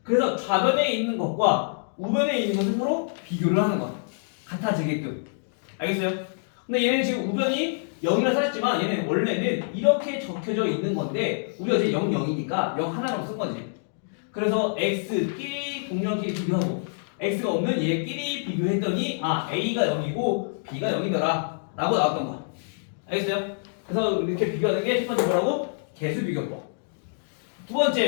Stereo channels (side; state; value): right; silent; digital silence